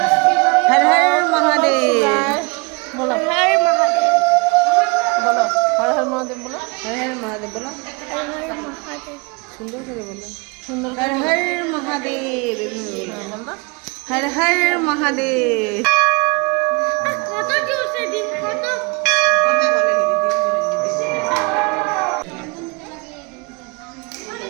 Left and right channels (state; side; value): quieter; left; 29.2 dB